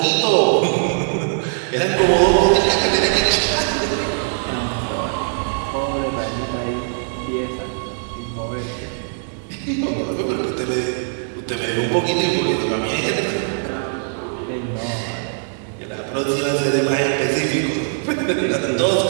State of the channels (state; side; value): silent; left; digital silence